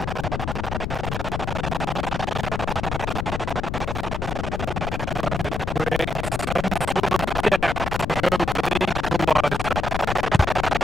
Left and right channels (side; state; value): left; noise; rumble, 3 dB below the sound